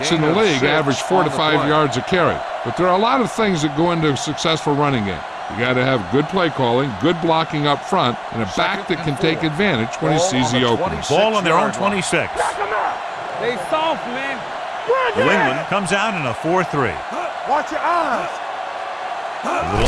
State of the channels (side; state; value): both; identical; correlation 1.00